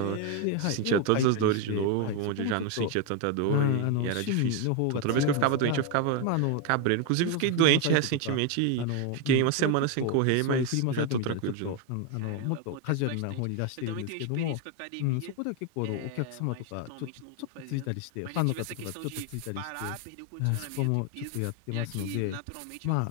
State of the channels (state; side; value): different; both; correlation 0.01